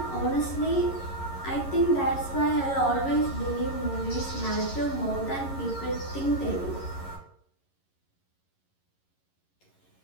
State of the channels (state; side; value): late; right; 11 ms